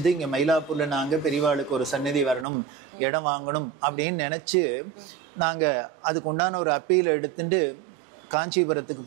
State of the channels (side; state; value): left; drops out; at 2.5 s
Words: இங்க மயிலாப்பூர்ல நாங்க பெரியவாளுக்கு ஒரு சந்நிதி வரணும், இடம் வாங்கணும் அப்படின்னு நினைச்சு நாங்க அதுக்கு உண்டான ஒரு அப்பீல் எடுத்துட்டு காஞ்சிபுரத்துக்கு